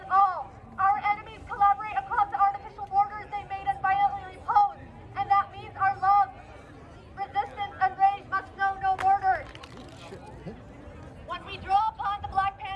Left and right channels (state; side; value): identical; both; correlation 1.00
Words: it all. Our enemies collaborate across the artificial borders they made and violently imposed, and that means our love, resistance, and rage must know no borders. When we draw upon the Black